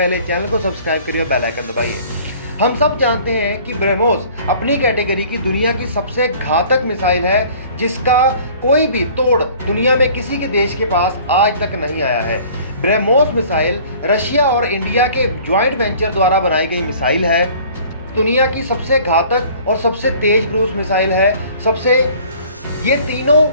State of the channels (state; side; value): inverted; both; correlation -0.50